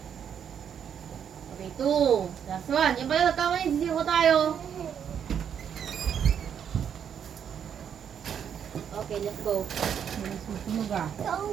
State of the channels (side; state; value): left; quieter; 8.3 dB